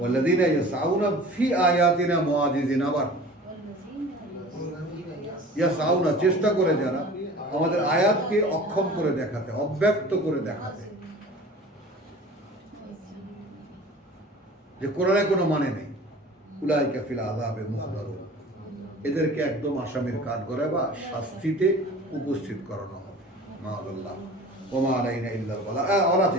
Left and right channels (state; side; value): normal; both; correlation 0.42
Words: ইয়াসআউনা ফি আয়াতিনা মুআজিজিন। আবার ইয়াসআউনা, চেষ্টা করে যারা আমাদের আয়াতকে অক্ষম করে দেখাতে, অব্যক্ত করে দেখাতে, যে কোরআনে কোনো মানে নেই, উলাইকা ফিল আযাবে মুহদারুন, এদেরকে একদম আসামির কাঠ করে বা শাস্তিতে উপস্থিত করানো হবে। মাআল্লাহ ওমা আলাইনা ইল্লাল বালাগ। আর